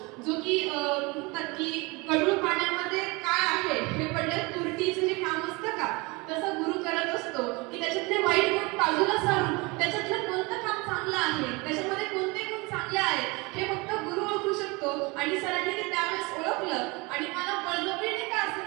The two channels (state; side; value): quieter; left; 26.0 dB